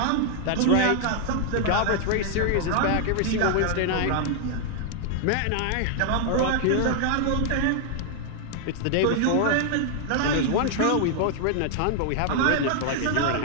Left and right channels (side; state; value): both; different; correlation 0.00